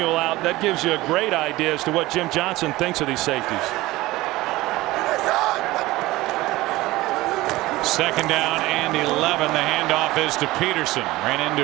out, that gives you a great idea as to what Jim Johnson thinks of these safeties. Second down and 11. The handoff is to Peterson. Ran into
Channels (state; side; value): quieter; left; 18.7 dB